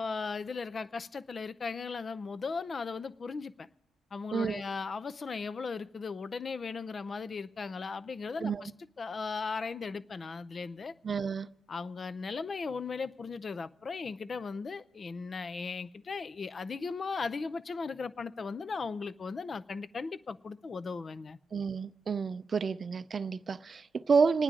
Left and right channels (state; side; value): normal; both; correlation 0.85